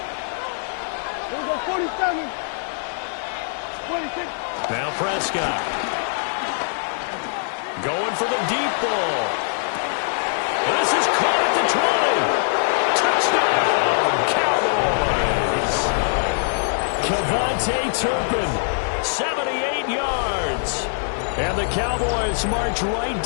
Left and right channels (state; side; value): silent; right; 55 dB below the other